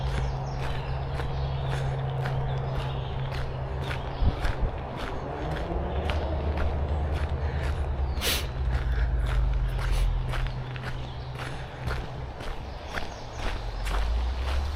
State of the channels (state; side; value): identical; both; correlation 1.00